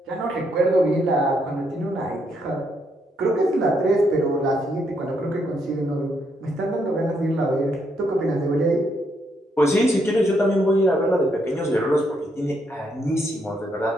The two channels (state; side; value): normal; both; correlation 0.76